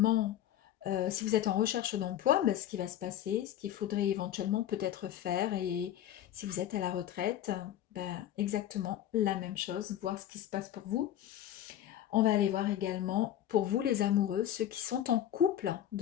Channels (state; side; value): quieter; right; 11.5 dB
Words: si vous êtes en recherche d'emploi, ben, ce qui va se passer, ce qu'il faudrait éventuellement peut-être faire. Et si vous êtes à la retraite, ben, exactement la même chose, voir ce qui se passe pour vous. On va aller voir également pour vous les amoureux, ceux qui sont en couple